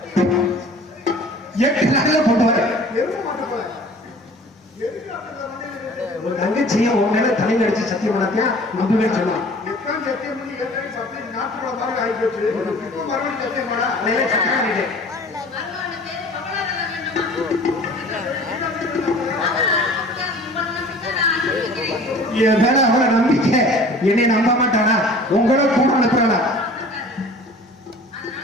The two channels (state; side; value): normal; both; correlation 0.46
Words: 8 நாள்ல போட்டு வர ஒரு தங்கச்சியை உன் மேல தலையில அடிச்சு சத்தியம் பண்ணத்தியா நம்பவே சொன்னான். என் மேல அவளை நம்பிக்கை, என்னை நம்ப மாட்டானா? உங்களோட கூட அனுப்புறானா?